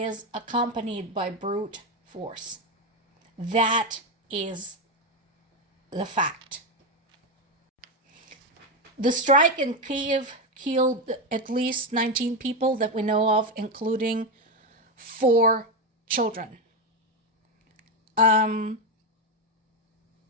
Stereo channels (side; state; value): both; normal; correlation 0.10